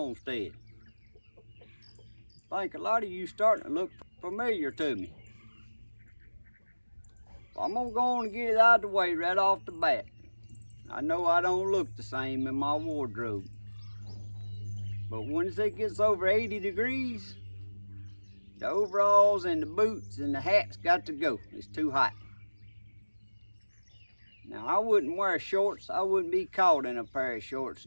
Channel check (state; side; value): inverted; both; correlation -1.00